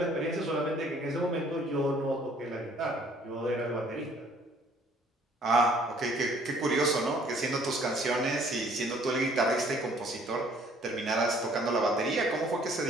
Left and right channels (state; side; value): normal; both; correlation 0.59